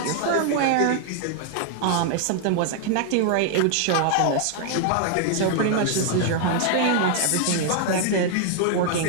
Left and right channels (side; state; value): both; different; correlation 0.00